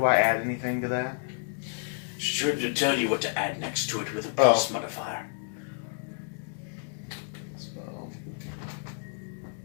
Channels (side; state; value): right; silent; digital silence